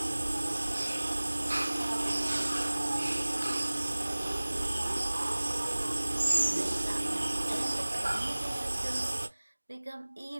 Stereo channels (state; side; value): inverted; both; correlation -1.00